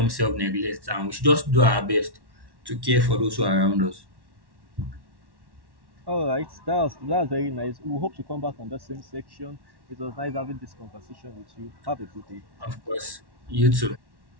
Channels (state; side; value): late; left; 1.1 ms